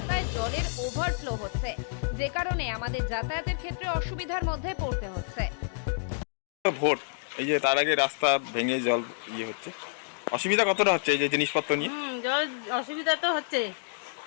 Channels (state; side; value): silent; right; digital silence